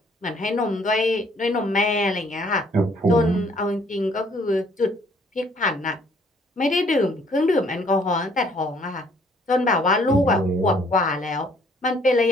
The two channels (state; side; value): normal; both; correlation 0.62